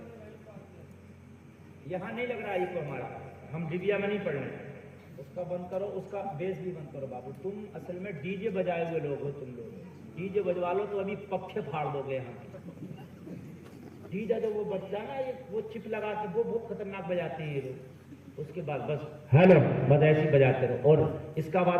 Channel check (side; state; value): both; identical; correlation 1.00